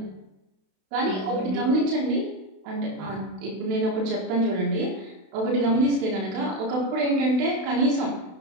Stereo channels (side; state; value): left; late; 32 ms